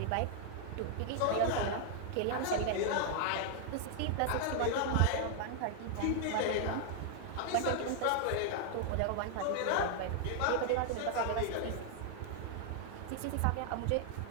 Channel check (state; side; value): different; both; correlation 0.00